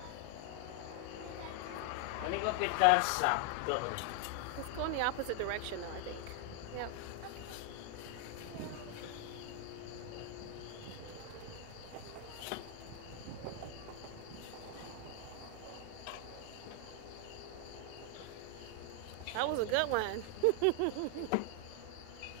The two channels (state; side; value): different; both; correlation 0.01